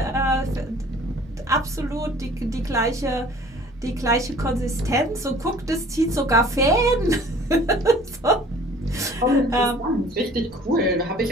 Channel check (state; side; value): normal; both; correlation 0.50